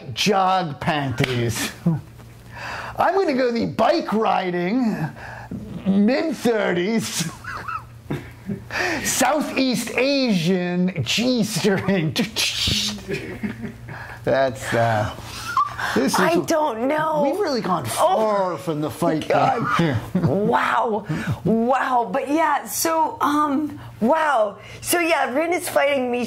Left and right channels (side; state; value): both; identical; correlation 1.00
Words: jog panties. I'm going to go the bike riding mid-30s. Southeast Asian G-string. That's I don't know. We've really gone far from the fight. Wow. But yeah, so wow. So yeah, Rin is fighting